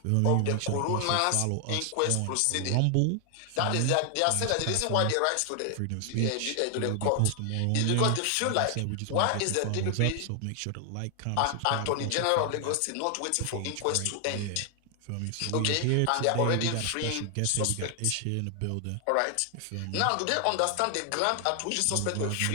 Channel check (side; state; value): both; different; correlation 0.00